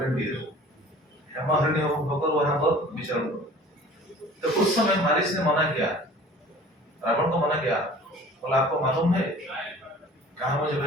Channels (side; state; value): both; normal; correlation 0.46